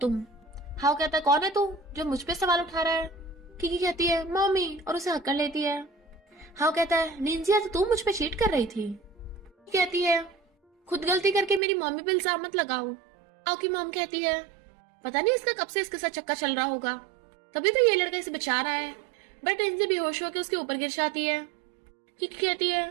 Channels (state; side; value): drops out; left; at 11.6 s